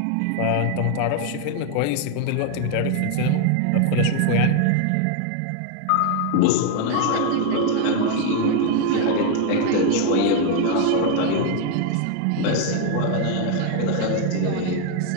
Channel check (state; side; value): different; both; correlation 0.00